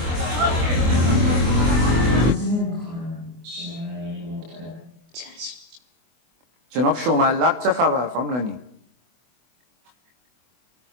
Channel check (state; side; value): late; left; 24 ms